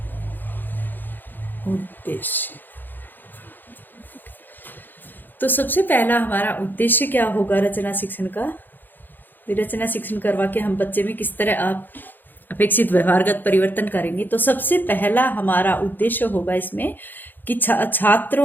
उद्देश्य। तो सबसे पहला हमारा उद्देश्य क्या होगा रचना शिक्षण का? रचना शिक्षण करवा के हम बच्चे में किस तरह आप अपेक्षित व्यवहारगत परिवर्तन करेंगे। तो सबसे पहला हमारा उद्देश्य होगा इसमें कि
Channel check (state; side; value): late; right; 0.090 ms